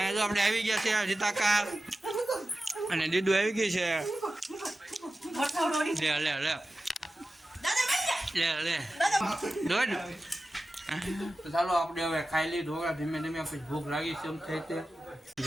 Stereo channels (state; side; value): normal; both; correlation 0.94